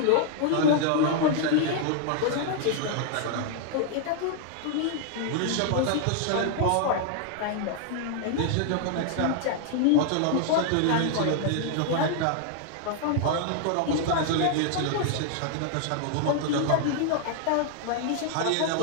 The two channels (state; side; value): different; both; correlation 0.00